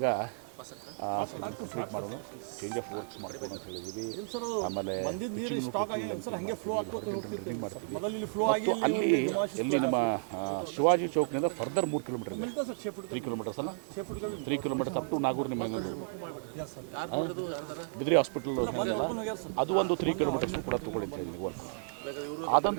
ಇದನ್ನು ಕಂಪ್ಲೀಟ್ ಮಾಡೋಣ, ಚೇಂಜ್ ಆಫ್ ವರ್ಕ್ಸ್ ಮಾಡ್ಕೊಂಡು ಅಂತ ಹೇಳಿದ್ದೀವಿ. ಆಮೇಲೆ ಪಿಚ್ಚಿಂಗ್ನು ಟೋಟಲ್ ಲೆಂತಿಂಗ್ ಮಾಡ್ತೀವಿ, ಇಲ್ಲಿ ಹಾರಿಜಾಂಟಲ್ ಡ್ರಿಲ್ಲಿಂಗ್ ಮಾಡ್ತೀವಿ. ಮತ್ತು ಅಲ್ಲಿ ಎಲ್ಲಿ ನಮ್ಮ ಶಿವಾಜಿ ಚೌಕ್ನಿಂದ ಫರ್ದರ್ 3 ಕಿಲೋಮೀಟರ್ ಇದೆ. 3 ಕಿಲೋಮೀಟರ್ಸ್ ಅಲ್ಲ, 3 ಕಿಲೋಮೀಟರ್ಸ್ ಅಪ್ ಟು ನಾಗೂರು ನಿಮ್ಮ ಇನ್ನೊಂದು ಬಿದ್ರಿ ಹಾಸ್ಪಿಟಲ್ ಏನಿದೆಲ್ಲ ಅದು ಒಂದು 3 ಕಿಲೋಮೀಟರ್ಸ್ನು ಕೂಡ ತೊಗೊಳ್ಳಿ ಅಂತ ಹೇಳಿದ್ದೀನಿ ವರ್ಕು. ಅದೊಂದು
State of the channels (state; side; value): silent; left; digital silence